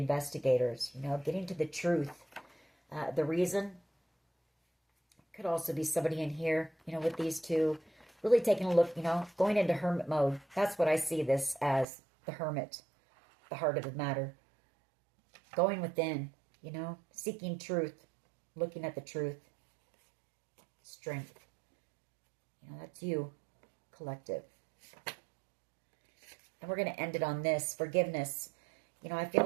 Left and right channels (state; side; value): drops out; left; at 11.9 s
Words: you know, getting to the truth. The reason could also be somebody in here, you know, with these two, really taking a look, you know, going into hermit mode. That's what I see this as, the hermit, the heart of the matter. Going within, you know, seeking truth, looking at the truth, strength. You know, that's you, collective. And we're going to end it on this, forgiveness. You know, I feel